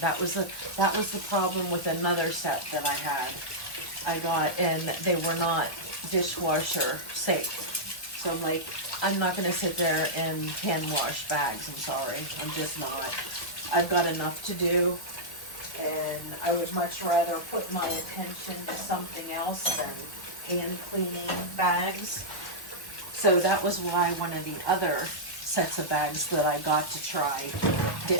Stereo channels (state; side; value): late; right; 1.1 ms